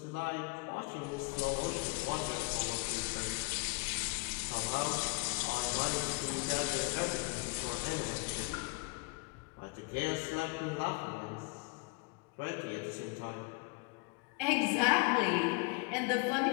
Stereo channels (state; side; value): quieter; right; 28.1 dB